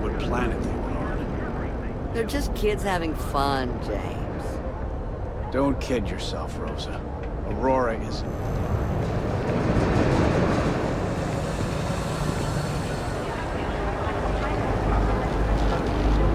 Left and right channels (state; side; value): identical; both; correlation 1.00